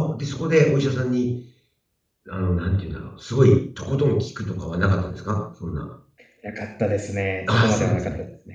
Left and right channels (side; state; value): both; identical; correlation 1.00